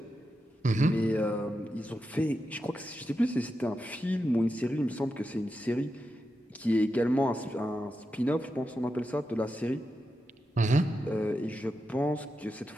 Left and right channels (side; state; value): both; normal; correlation 0.88